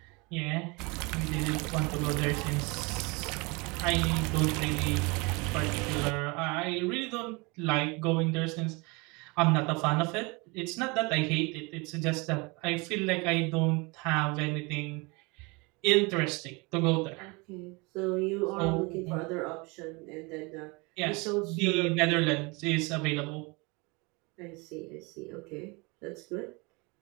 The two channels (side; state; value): left; quieter; 27.7 dB